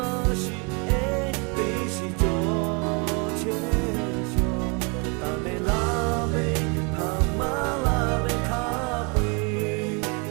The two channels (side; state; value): left; quieter; 33.2 dB